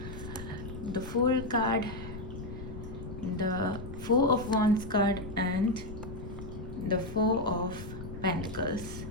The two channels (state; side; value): noise; left; rumble, 10 dB below the sound